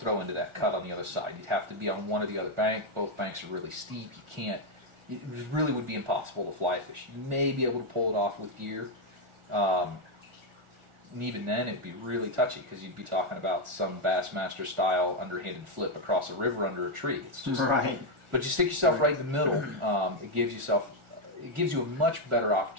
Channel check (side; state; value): left; late; 1.4 ms